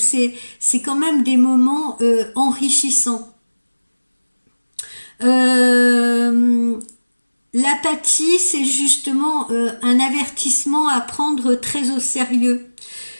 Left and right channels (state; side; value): inverted; both; correlation -1.00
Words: quand même des moments enrichissants. L'apathie, c'est justement un avertissement à prendre très au sérieux.